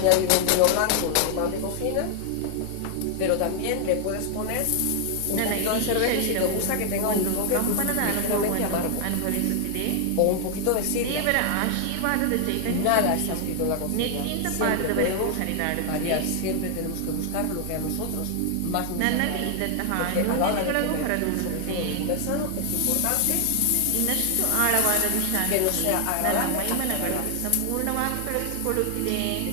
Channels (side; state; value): both; different; correlation 0.00